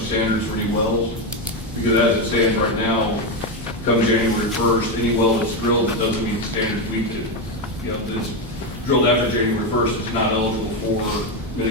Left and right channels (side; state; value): both; normal; correlation 0.09